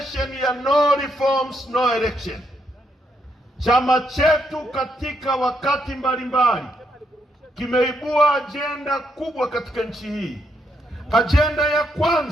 ya no reforms no election. Chama chetu katika wakati mbalimbali kimeibua ajenda kubwa katika nchi hii. Ajenda ya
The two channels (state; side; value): normal; both; correlation 0.77